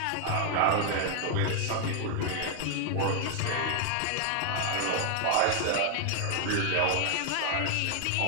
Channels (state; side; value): different; both; correlation 0.00